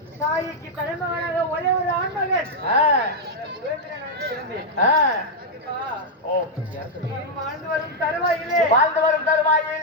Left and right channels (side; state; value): both; normal; correlation -0.02